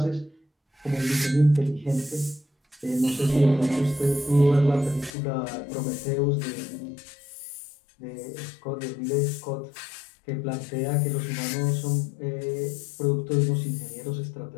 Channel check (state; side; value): drops out; right; at 5.2 s